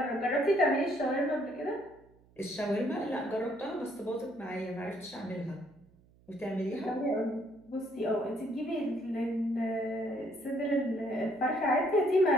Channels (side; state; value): right; noise; hum, 29 dB below the sound